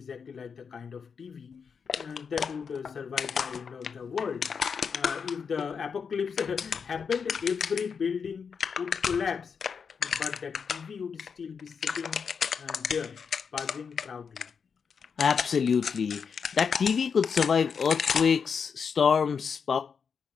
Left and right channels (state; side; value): quieter; right; 6.2 dB